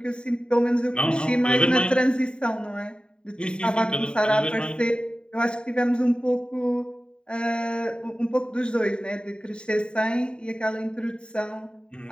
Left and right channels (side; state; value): right; late; 0.050 ms